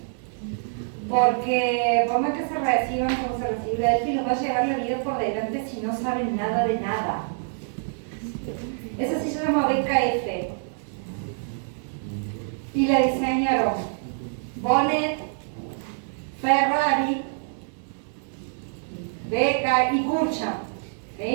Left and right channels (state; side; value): silent; left; digital silence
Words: porque por más que se reciban como se recibe Delphi, los va a llevar la vida por delante si no saben nada de nada. Esa sí se llama BKF y la diseñaron Bonnet, Ferrari, Beca y Kurcha,